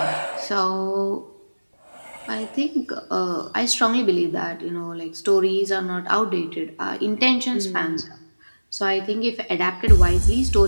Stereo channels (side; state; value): both; inverted; correlation -1.00